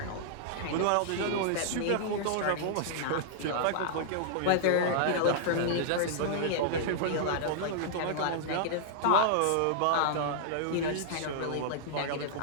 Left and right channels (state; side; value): different; both; correlation -0.01